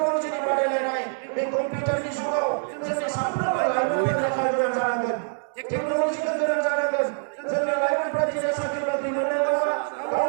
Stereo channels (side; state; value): left; silent; digital silence